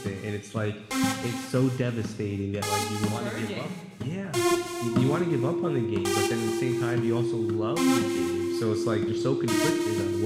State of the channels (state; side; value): identical; both; correlation 1.00